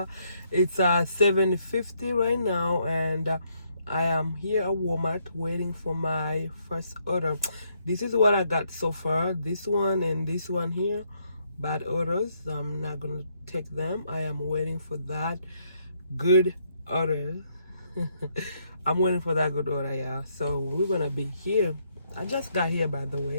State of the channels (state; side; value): inverted; both; correlation -0.73